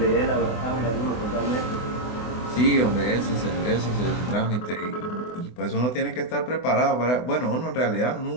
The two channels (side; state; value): right; late; 24 ms